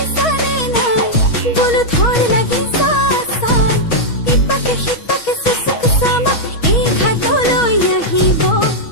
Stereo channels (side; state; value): right; late; 6.2 ms